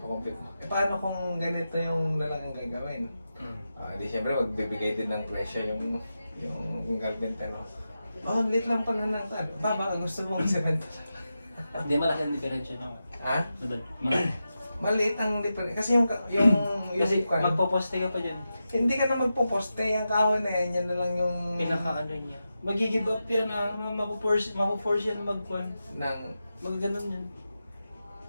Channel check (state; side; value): inverted; both; correlation -0.90